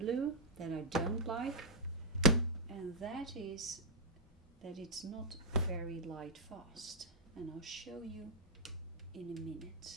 that I don't like, and that is that it's not very light fast, and I'll show you in a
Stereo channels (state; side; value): normal; both; correlation -0.06